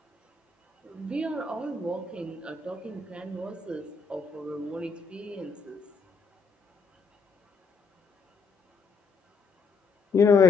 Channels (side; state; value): right; quieter; 4.7 dB